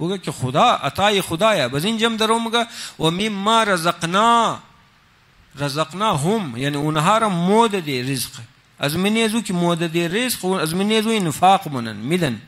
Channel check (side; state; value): both; identical; correlation 1.00